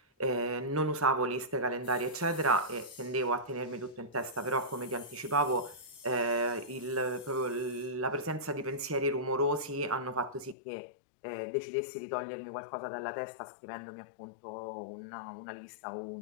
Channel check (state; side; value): drops out; right; at 10.6 s